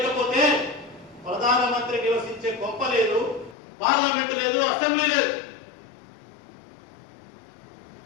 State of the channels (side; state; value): right; drops out; at 3.6 s